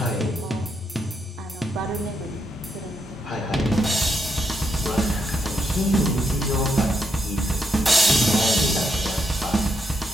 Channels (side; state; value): both; normal; correlation 0.80